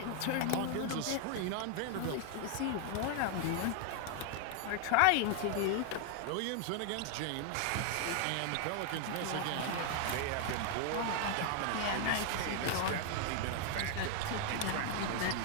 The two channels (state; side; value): different; both; correlation 0.00